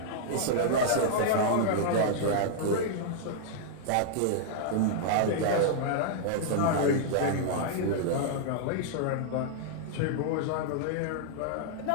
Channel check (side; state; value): both; different; correlation -0.01